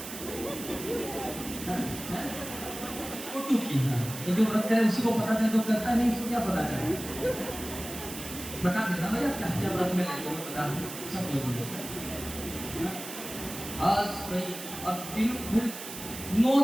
तो जो व्रत करे उसी को पता चले, तो करता नहीं उसको क्या पता चले? बता देना भैया क्या क्या व्रत में लेते हो, बता सब कुछ। अब दिन फिर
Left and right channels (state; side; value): noise; right; hiss, 10 dB below the sound